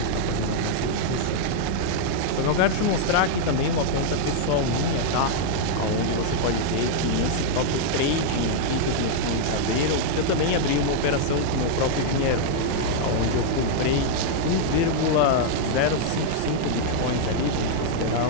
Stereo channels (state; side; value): different; both; correlation -0.01